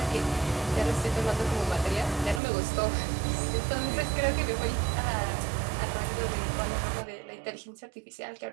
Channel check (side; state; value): left; drops out; at 2.4 s